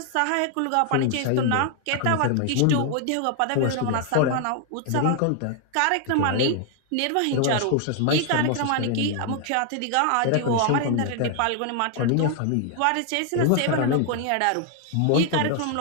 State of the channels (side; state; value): both; different; correlation 0.00